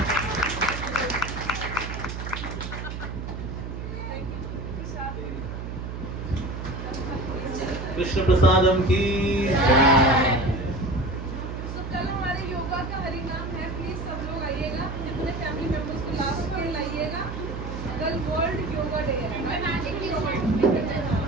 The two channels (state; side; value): noise; right; hum, 7 dB below the sound